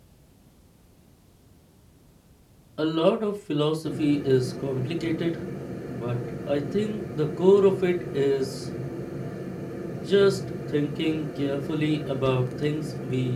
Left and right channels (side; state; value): both; identical; correlation 1.00